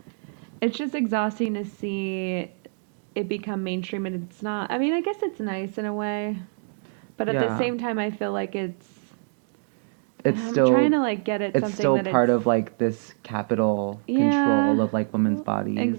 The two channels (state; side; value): silent; left; 57 dB below the other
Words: it's just exhausting to see it become mainstream and it's not. I mean, I guess it's nice in a way, but at the Yeah. same time I feel like It's I'm trying still to like get at it's something still that part it's of like this capital yeah, control of like women's bodies.